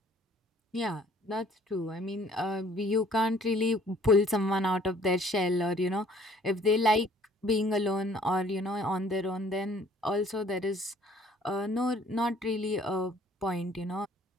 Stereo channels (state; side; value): normal; both; correlation 0.57